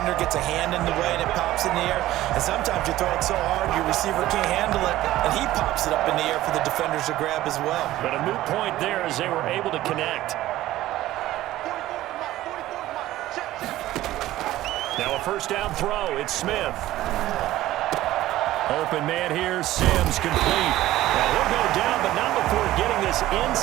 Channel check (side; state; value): left; quieter; 15.3 dB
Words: gets a hand in the way and it pops in the air. And sometimes you throw it so hard your receiver can't handle it, and he pops it up in the air for the defenders to grab as well. But a moot point there as they were able to connect. Now a first down throw. It's Smith. Open man here. Sims complete. Now he'll go down, but not before getting this